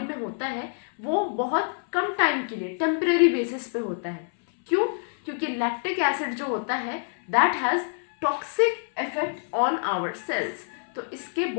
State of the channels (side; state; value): right; silent; 61 dB below the other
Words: में होता है वो बहुत कम टाइम के लिए टेम्परेरी बेसिस पे होता है। क्यों? क्योंकि लैक्टिक एसिड जो होता है that has toxic effect on our cells. तो इसके